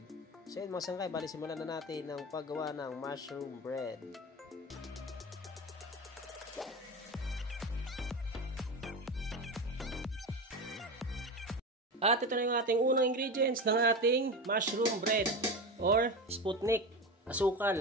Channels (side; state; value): both; normal; correlation 0.24